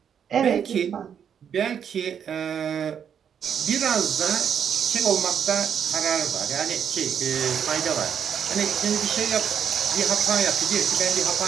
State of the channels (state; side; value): quieter; left; 8.1 dB